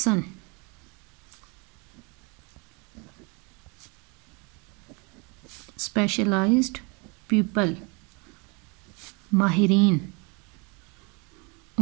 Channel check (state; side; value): quieter; left; 31.1 dB